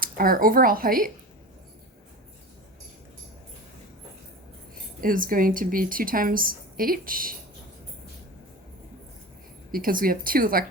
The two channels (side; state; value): both; normal; correlation 0.31